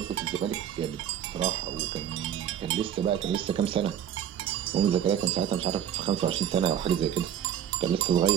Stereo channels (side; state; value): left; quieter; 9.7 dB